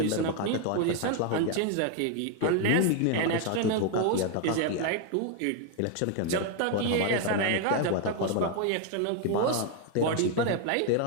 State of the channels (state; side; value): different; both; correlation 0.01